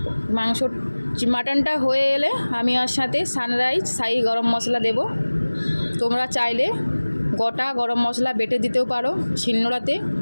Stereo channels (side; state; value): both; inverted; correlation -1.00